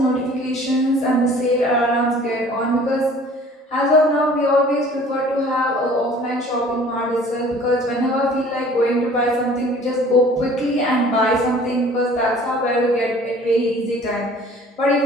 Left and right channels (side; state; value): both; normal; correlation 0.50